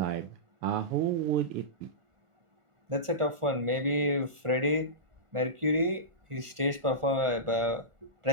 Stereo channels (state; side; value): late; left; 1.4 ms